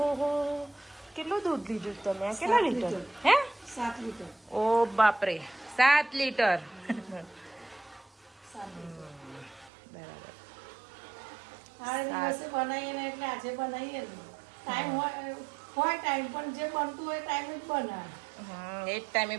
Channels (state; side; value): drops out; left; at 9.7 s